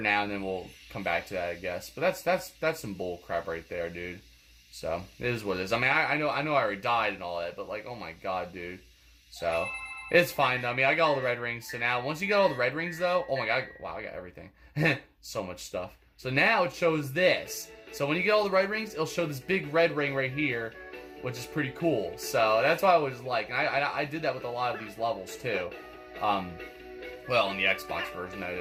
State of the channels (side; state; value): both; identical; correlation 1.00